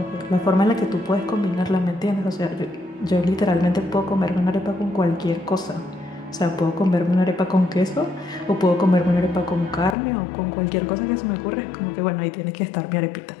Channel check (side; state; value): right; drops out; at 10.0 s